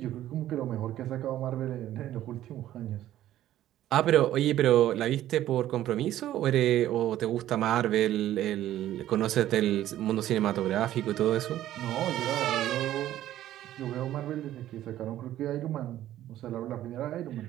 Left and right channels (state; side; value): quieter; left; 13.1 dB